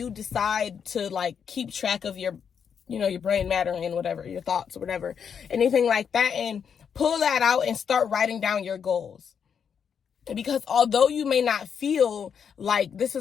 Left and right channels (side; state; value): right; quieter; 7.2 dB